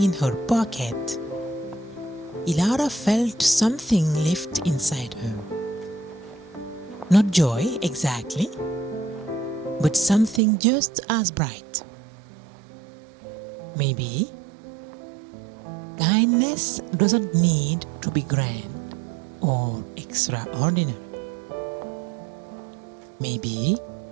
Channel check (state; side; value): drops out; left; at 10.4 s